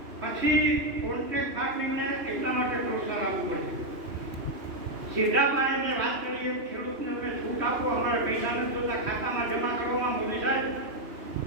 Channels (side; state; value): left; late; 2.9 ms